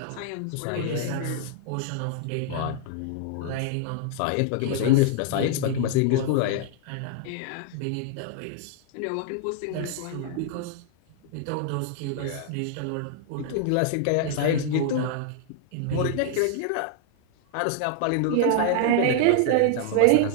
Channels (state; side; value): different; both; correlation 0.00